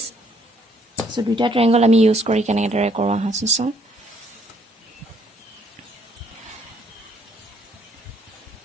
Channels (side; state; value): both; normal; correlation 0.67